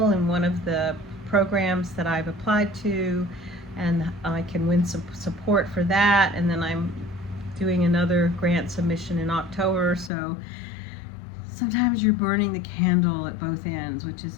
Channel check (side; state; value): right; drops out; at 10.1 s